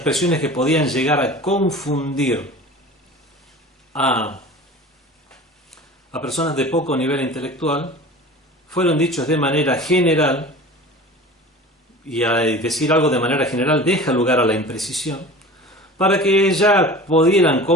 que podían llegar a confundir a personas de poco nivel intelectual, fueron dichos de manera general, y al decir algo de manera general deja lugar a la imprecisión, para que ya pudieran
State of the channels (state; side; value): normal; both; correlation 0.38